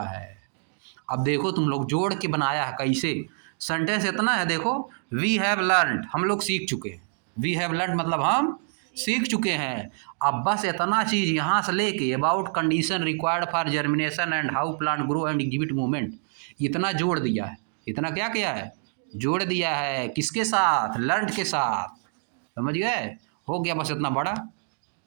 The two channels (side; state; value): left; silent; 58 dB below the other